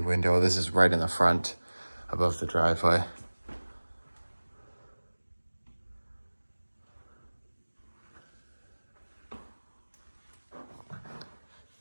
This is right in the front above the driveway.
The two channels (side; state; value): both; inverted; correlation -1.00